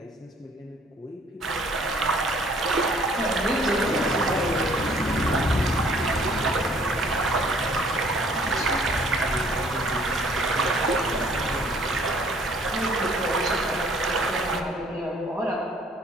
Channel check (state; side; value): normal; both; correlation 0.58